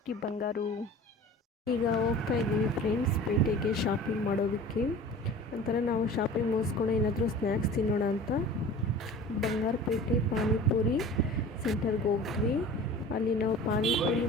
ಬಂಗಾರು. ಈಗ ಹೋಗ್ತಾ ಇದ್ದೀವಿ ಫ್ರೆಂಡ್ಸ್ ಪೇಟೆಗೆ ಶಾಪಿಂಗ್ ಮಾಡೋದಕ್ಕೆ. ನಂತರ ನಾವು ಶಾಪಿಂಗ್ ಮುಗಿಸ್ಕೊಂಡು ಏನಾದರೂ ಸ್ನ್ಯಾಕ್ಸ್ ತಿನ್ನೋಣ ಅಂತ ಬಂಗಾರಪೇಟೆ ಪಾನಿಪುರಿ ಸೆಂಟರ್ಗೆ ಹೋಗ್ದ್ವಿ. ಅಲ್ಲಿ ನಾವು ಪಾನಿಪುರಿ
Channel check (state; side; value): normal; both; correlation 0.41